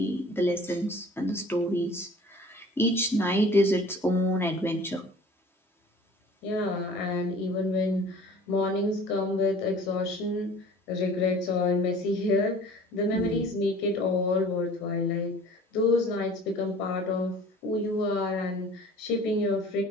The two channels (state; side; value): normal; both; correlation 0.47